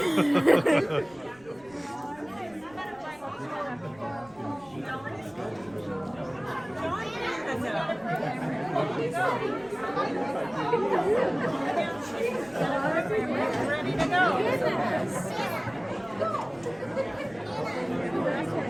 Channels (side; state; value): right; noise; rumble, 26 dB below the sound